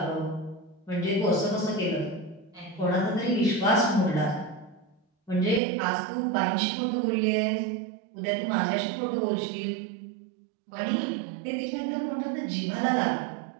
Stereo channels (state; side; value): drops out; left; at 5.6 s